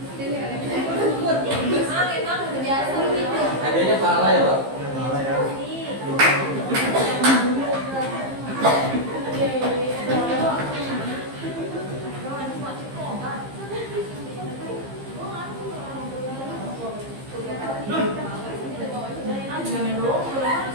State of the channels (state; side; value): late; left; 15 ms